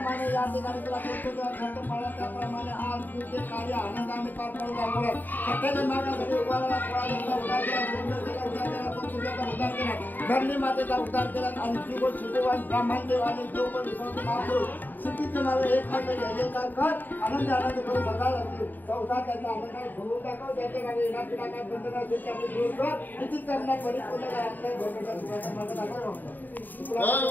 या ठिकाणी तुला त्याप्रमाणे आज तुझे कार्य आनंदाने पार पडू लागलं सत्याच्या मार्गासाठी उभारला उद्धार केला धरणी मातेचा उद्धार केला आणि जीवन शिववान ब्राह्मणदेव आणि जीवन विश्वास महापुरुष सिद्धीचे माझे एक मात्र जयजयकार कर आनंद करून बघायला चौथा त्यांचा आनंदाने भरून दाखव त्याच्या मागे येणार पिढा काय बंधना दूर कर निश्चित करण्यात परिपूर्ण आपल्या भोगाचा मार्ग दाखव.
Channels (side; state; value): right; late; 0.088 ms